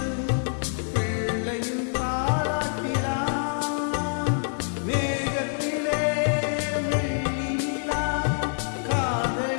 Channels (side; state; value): right; silent; 61 dB below the other